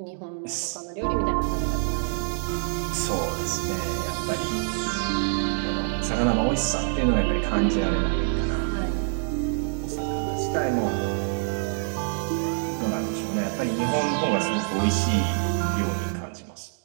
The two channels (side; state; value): left; silent; 61 dB below the other